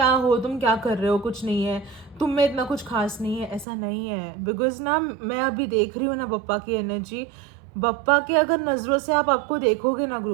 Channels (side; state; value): left; drops out; at 3.7 s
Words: हो, तुम क्या कर रहे हो, कुछ नहीं है, तुम में इतना कुछ खास नहीं है। ऐसा नहीं है, बिकॉज ना मैं अभी देख रही हूँ ना बप्पा की एनर्जी। बप्पा के अगर नज़रों से आपको देखोगे ना